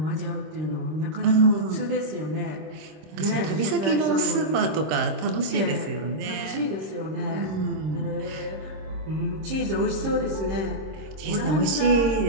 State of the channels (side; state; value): left; late; 26 ms